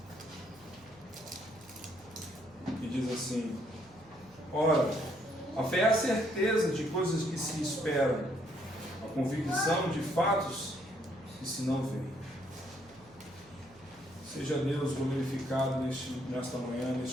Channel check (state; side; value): noise; right; hum, 26 dB below the sound